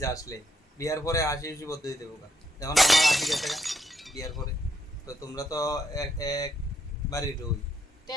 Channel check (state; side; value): normal; both; correlation 0.76